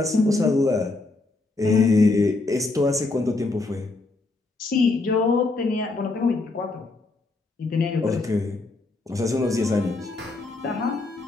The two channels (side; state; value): right; quieter; 3.3 dB